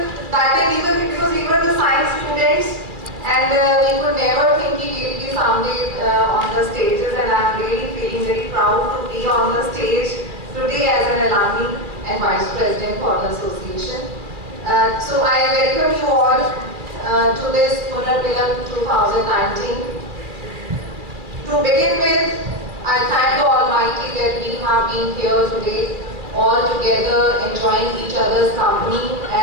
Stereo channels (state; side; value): late; left; 2.4 ms